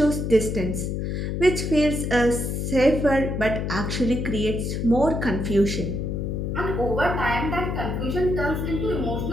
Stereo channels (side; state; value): left; noise; hum, 2 dB below the sound